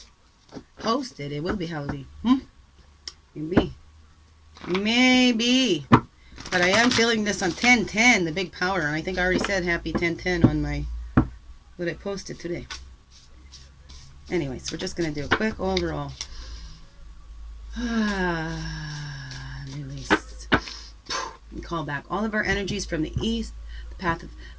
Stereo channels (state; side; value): identical; both; correlation 1.00